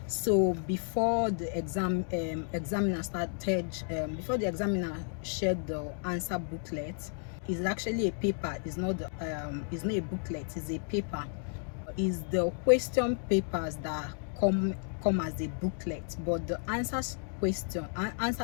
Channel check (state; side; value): silent; right; 56 dB below the other